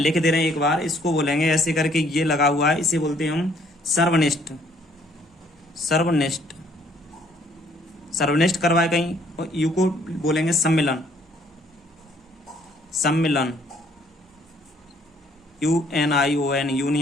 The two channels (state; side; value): normal; both; correlation 0.64